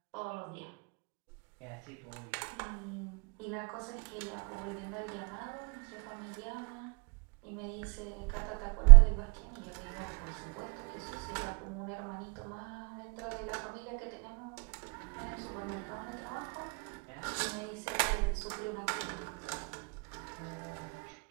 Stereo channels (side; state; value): left; quieter; 30.6 dB